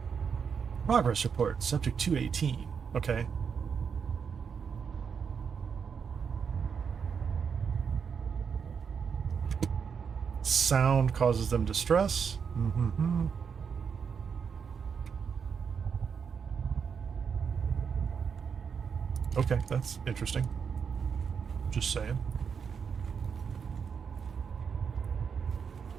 Progress report, subject 218. Okay. Sound causes them distress. Mm-hmm. Okay, that's interesting. Just saying.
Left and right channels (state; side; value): quieter; left; 6.5 dB